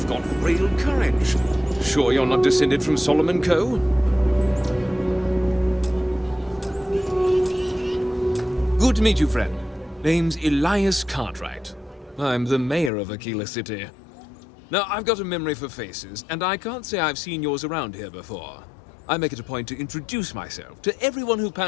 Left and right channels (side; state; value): right; drops out; at 12.9 s